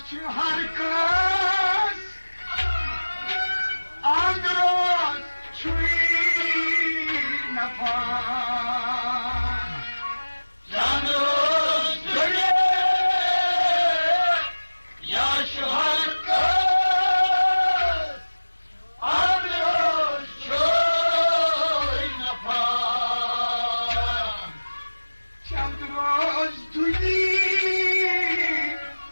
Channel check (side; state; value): both; inverted; correlation -1.00